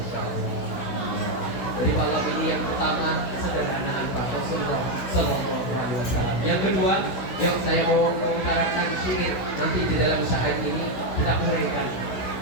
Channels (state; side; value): late; right; 16 ms